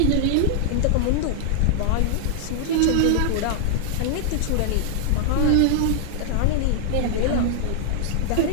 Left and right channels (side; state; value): both; different; correlation 0.00